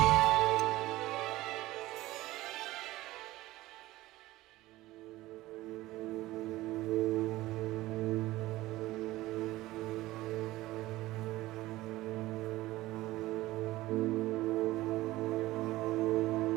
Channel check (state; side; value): quieter; left; 17.5 dB